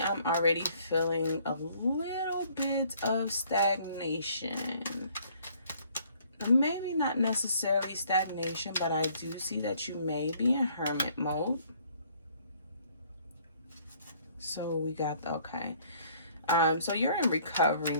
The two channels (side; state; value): both; inverted; correlation -0.61